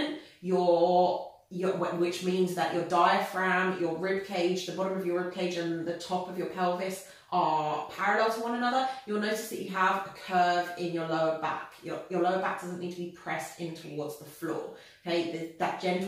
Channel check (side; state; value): both; identical; correlation 1.00